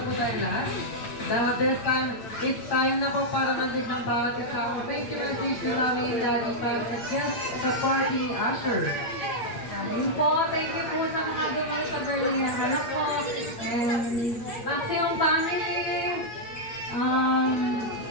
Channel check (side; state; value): right; late; 8.7 ms